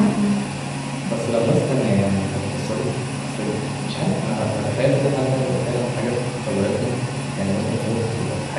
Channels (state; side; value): identical; both; correlation 1.00